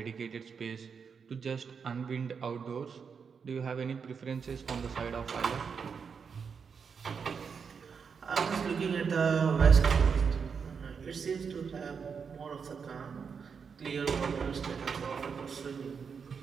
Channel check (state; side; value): quieter; left; 6.1 dB